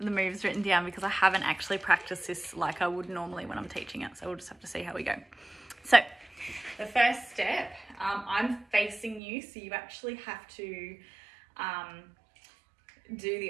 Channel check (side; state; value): left; drops out; at 9.2 s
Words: moves written down, because I haven't actually practiced this like I would normally when I'm teaching it. So we'll just have to see how we go. So the first step, I'm facing you, so you actually have to do